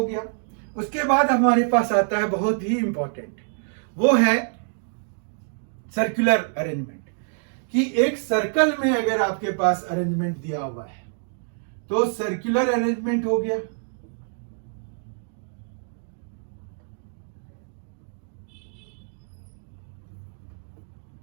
गया। उसके बाद हमारे पास आता है बहुत ही इंपॉर्टेंट, वो है सर्कुलर अरेंजमेंट। कि एक सर्कल में अगर आपके पास अरेंजमेंट दिया हुआ है तो सर्कुलर अरेंजमेंट हो गया।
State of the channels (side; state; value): left; silent; 61 dB below the other